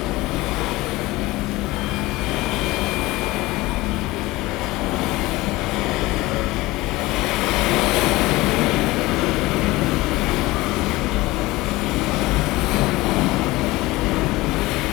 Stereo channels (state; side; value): quieter; right; 20.0 dB